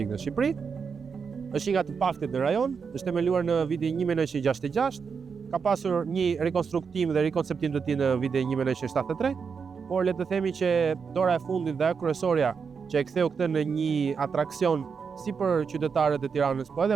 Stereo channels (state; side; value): quieter; left; 5.9 dB